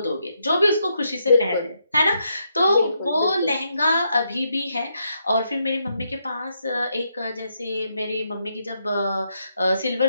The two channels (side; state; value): both; inverted; correlation -0.79